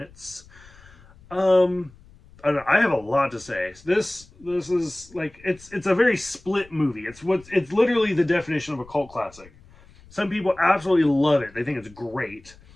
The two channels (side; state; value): left; noise; rumble, 25 dB below the sound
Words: I don't know, I have a lot to say. This is like it's a very split movie. It's literally the definition of a cult classic. Some people absolutely love it. They think it's great.